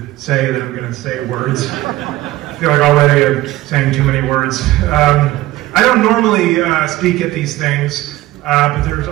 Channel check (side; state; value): left; quieter; 16.8 dB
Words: say that I'm going to say words. I feel like already I'm saying too many words. I don't normally speak at these things, but there's